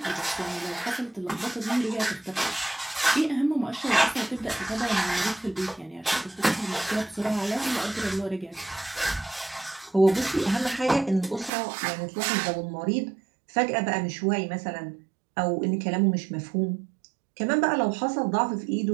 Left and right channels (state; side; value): drops out; left; at 11.5 s